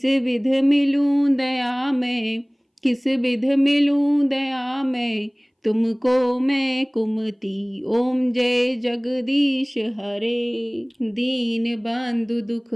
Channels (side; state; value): both; identical; correlation 1.00